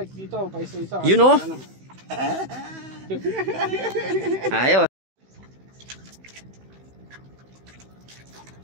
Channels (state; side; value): late; left; 16 ms